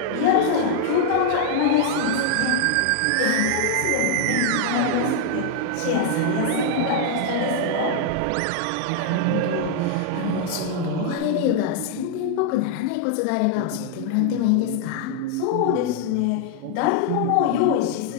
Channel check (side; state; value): both; different; correlation 0.00